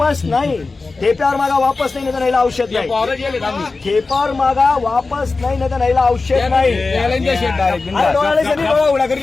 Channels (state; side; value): quieter; right; 3.8 dB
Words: नाही. ठेप्यावर मागा वापस नाही, नाही औषध नाही. ठेपावर मागा वापस नाही, नाही औषध नाही.